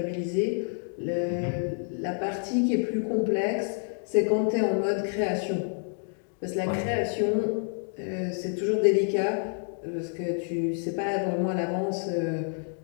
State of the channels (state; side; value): silent; right; 57 dB below the other